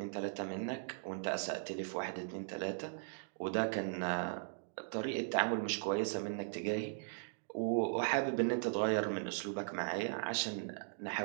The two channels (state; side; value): silent; left; digital silence